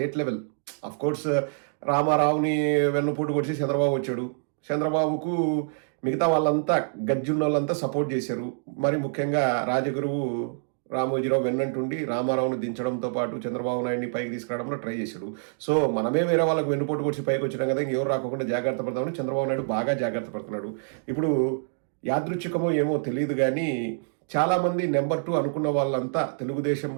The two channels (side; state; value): left; silent; digital silence